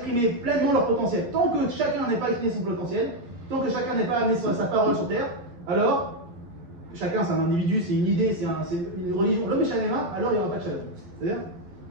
pleinement leur potentiel. Tant que chacun n'est pas exprimé son potentiel, tant que chacun n'est pas amené sa parole sur terre, alors, chacun c'est un individu, c'est une idée, c'est une religion, l'homme est shalema, alors il n'y aura pas de Shalom. C'est-à-dire,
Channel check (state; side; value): late; left; 11 ms